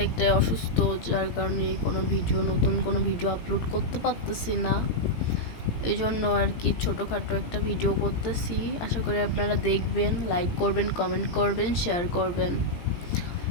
অসুস্থ, যার কারণে নতুন কোনো ভিডিও আপলোড করতে পারতেছি না। এই জন্য আর কি ছোটোখাটো একটা ভিডিও করতেছি। আশা করি আপনারা দেখবেন, লাইক করবেন, কমেন্ট করবেন, শেয়ার করবেন।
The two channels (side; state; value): right; late; 17 ms